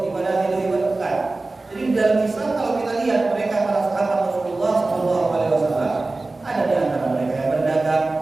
ibadah, bukan. Jadi di dalam Islam kalau kita lihat mereka para sahabat Rasulullah SAW, ada di antara mereka yang berdagang,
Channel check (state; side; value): quieter; left; 3.3 dB